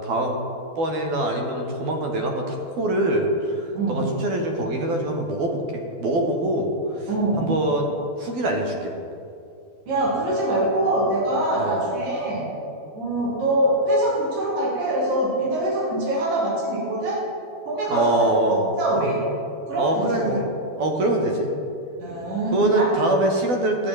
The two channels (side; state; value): left; late; 12 ms